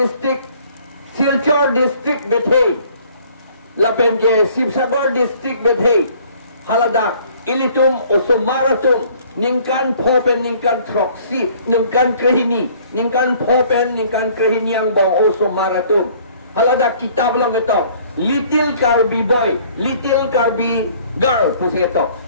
Silchar district bethe, lapen ke Sibsagar district bethe, Haladak, Ilitum, Osomaratum, Ningkan Popen, Ningkan Troxi, Ningkan Krehini, Ningkan Popen, Ningkan Krehini yang bong Osomaratum. Haladak kitab lang ito, Little Karbi Boy, Little Karbi Girl, pusi ito.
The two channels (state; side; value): inverted; both; correlation -0.56